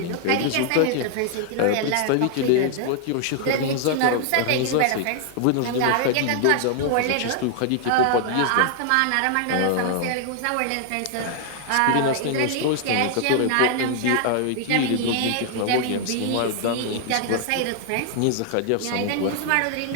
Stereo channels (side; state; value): both; different; correlation 0.00